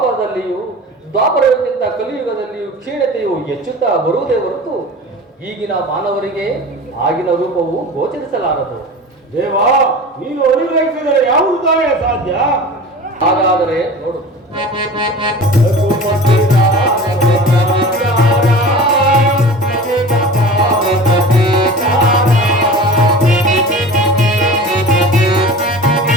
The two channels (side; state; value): both; normal; correlation 0.36